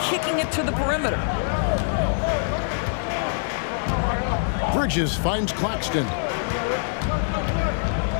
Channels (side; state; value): right; silent; digital silence